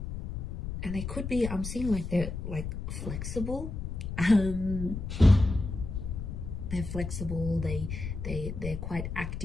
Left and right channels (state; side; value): noise; left; rumble, 6 dB below the sound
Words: And they could be, I'm seeing like they're like flexible. They're flexible, they're quite